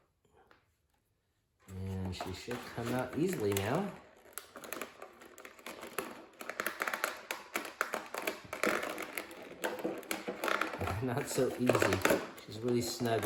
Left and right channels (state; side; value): identical; both; correlation 1.00